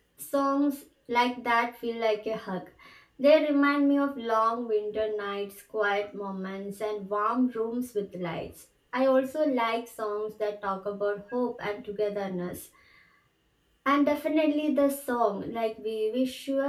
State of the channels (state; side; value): identical; both; correlation 1.00